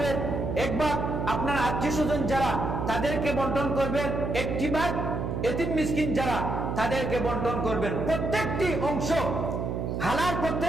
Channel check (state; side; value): noise; right; hum, 2 dB below the sound